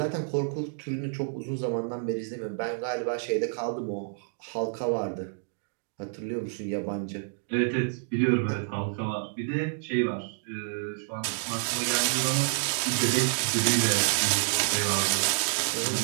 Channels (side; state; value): left; silent; digital silence